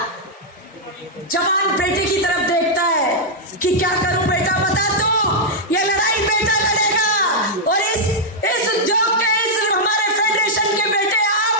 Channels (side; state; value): both; normal; correlation -0.05